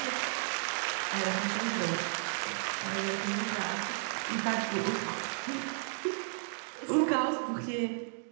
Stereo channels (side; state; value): left; silent; digital silence